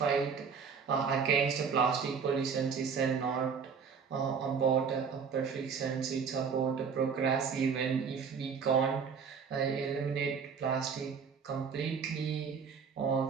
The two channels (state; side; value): quieter; left; 6.1 dB